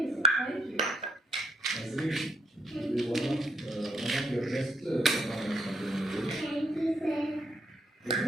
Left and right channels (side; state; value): both; normal; correlation 0.71